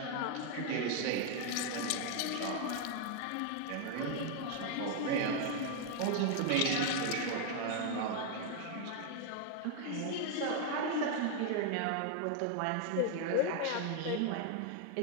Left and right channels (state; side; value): different; both; correlation 0.00